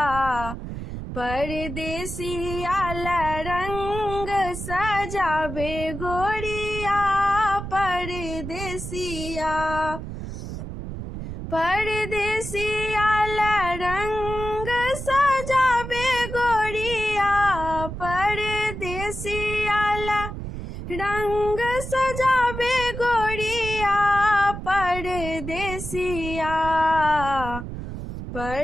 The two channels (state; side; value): noise; right; rumble, 8 dB below the sound